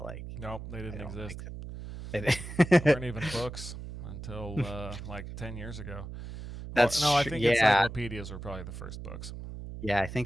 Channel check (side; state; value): right; noise; hum, 10 dB below the sound